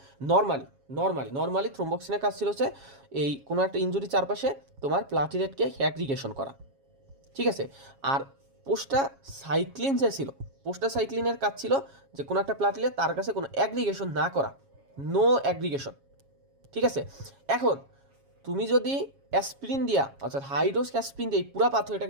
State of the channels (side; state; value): left; late; 7.3 ms